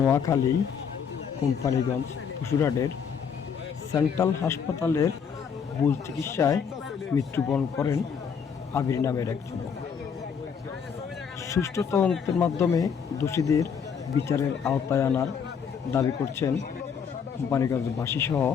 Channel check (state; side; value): quieter; right; 6.8 dB